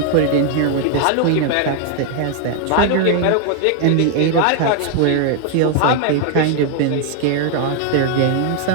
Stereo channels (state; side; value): different; both; correlation 0.00